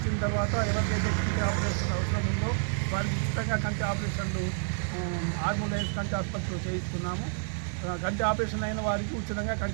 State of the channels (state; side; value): silent; left; 58 dB below the other